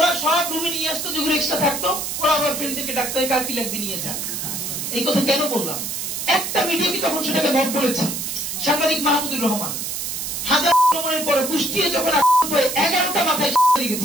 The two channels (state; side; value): noise; right; hiss, 4 dB below the sound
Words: সব রুমে নিয়ে আসতো, যেগুলো এক্সট্রা থাকতো ওরা আবার ফ্রেন্ডদেরকে ডাকতো, কার কি লাগবে নিয়ে যান। এই কথা কেন বললাম? একটা মিডিয়া কি তখন সেটাকে মত বলেছে। সাংবাদিক মাহমুদুর রহমান হাজার আক্রমণের পরে কুষ্টিয়ে যখন 11টা মাথায়